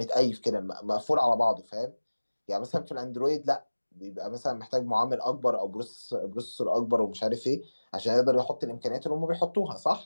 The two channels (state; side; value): inverted; both; correlation -1.00